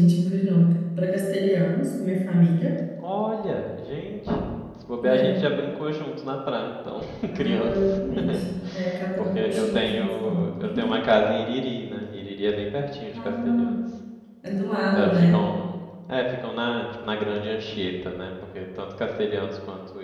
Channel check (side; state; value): both; identical; correlation 1.00